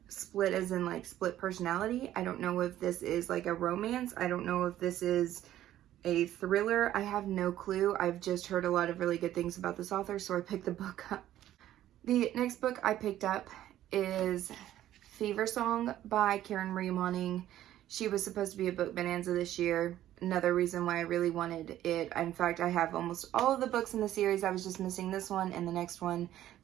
split as in like split personality. I don't know if this is like a romance. I don't know if this is a thriller. I have no clue. I've just heard a lot of really good things about this author, so I picked the book up. The next book I picked up is Fever Song by Karen Marie Moning. She was supposed to be a book bonanza this year. Another reason why I really wanted it. In fact, I have almost all of the books in the series. I was just missing this one and the next one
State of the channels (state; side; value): quieter; left; 12.9 dB